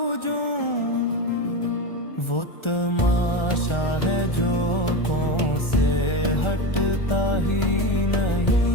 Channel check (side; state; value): right; late; 1.4 ms